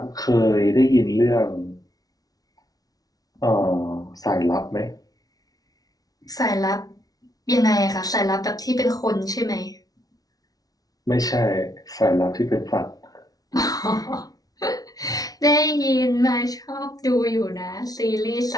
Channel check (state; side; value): late; right; 0.18 ms